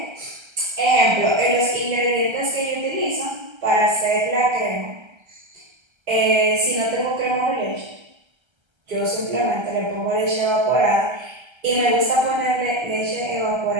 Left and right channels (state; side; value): late; left; 1.3 ms